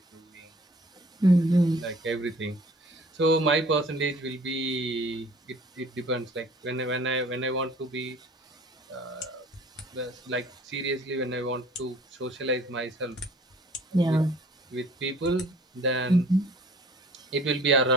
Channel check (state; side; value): normal; both; correlation 0.51